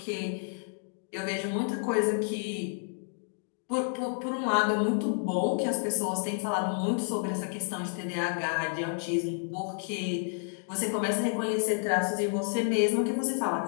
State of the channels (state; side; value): silent; right; 58 dB below the other